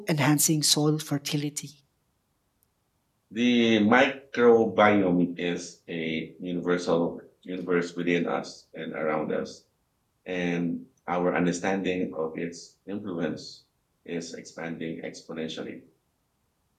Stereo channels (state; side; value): identical; both; correlation 1.00